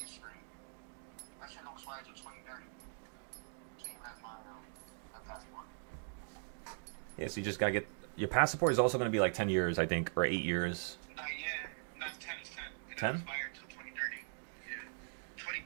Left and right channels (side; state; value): left; silent; digital silence